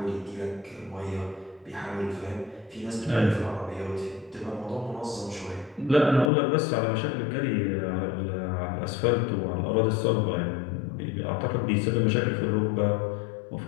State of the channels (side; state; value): right; drops out; at 6.3 s